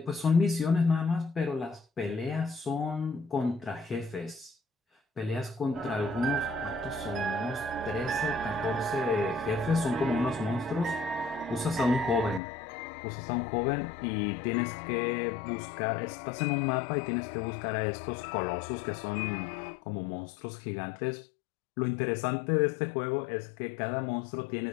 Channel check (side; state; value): right; drops out; at 12.4 s